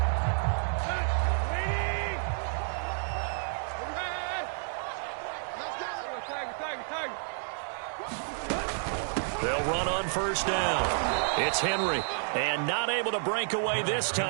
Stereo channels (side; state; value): left; silent; digital silence